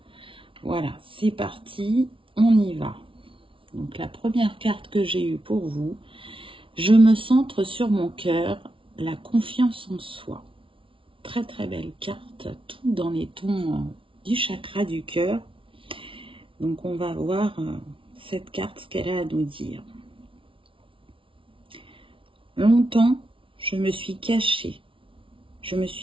Voilà, c'est parti, on y va. Donc la première carte que j'ai eue pour vous, je me centre sur mon cœur, la confiance en soi. Très très belle carte, tout dans les tons du chakra du cœur. Donc on va voir cette carte, ce qu'elle a à nous dire. Longtemps, je me suis cachée, je me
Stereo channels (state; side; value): late; left; 0.25 ms